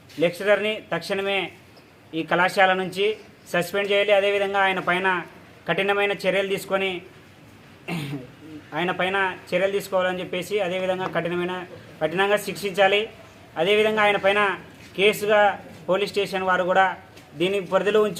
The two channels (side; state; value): both; identical; correlation 1.00